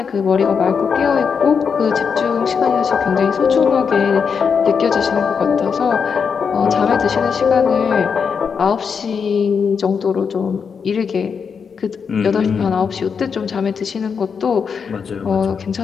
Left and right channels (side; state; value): right; quieter; 6.2 dB